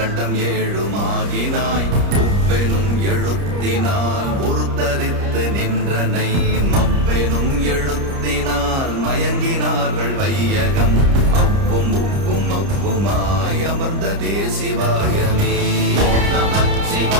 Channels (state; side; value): late; left; 30 ms